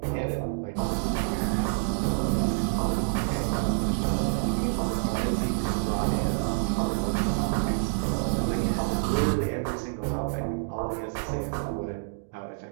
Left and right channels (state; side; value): silent; left; 60 dB below the other